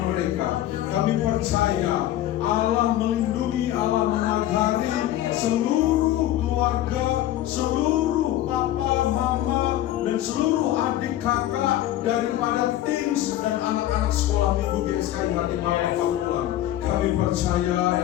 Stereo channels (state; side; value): quieter; right; 13.4 dB